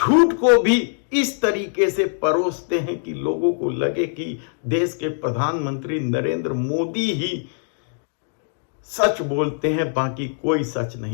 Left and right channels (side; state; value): right; silent; digital silence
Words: को भी इस तरीके से परोसते हैं कि लोगों को लगे कि देश के प्रधानमंत्री नरेंद्र मोदी ही सच बोलते हैं, बाकी कोई सच